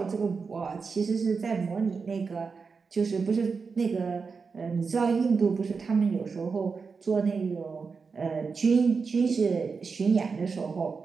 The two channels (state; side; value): quieter; left; 5.0 dB